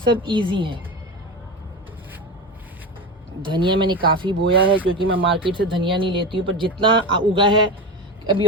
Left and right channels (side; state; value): both; normal; correlation 0.22